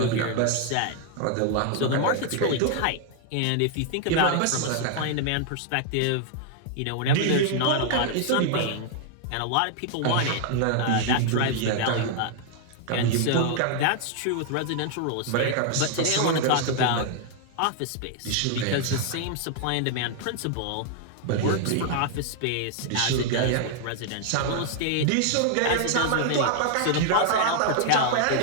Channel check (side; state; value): both; different; correlation 0.00